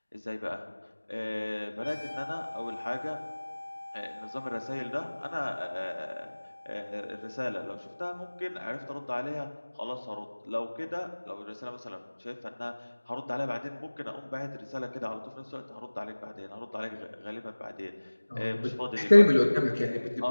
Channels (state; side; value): inverted; both; correlation -1.00